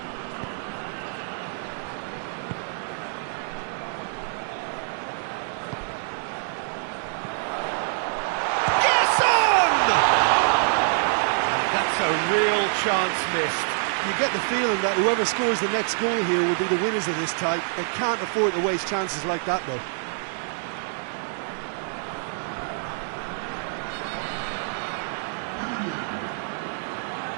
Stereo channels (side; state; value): left; silent; digital silence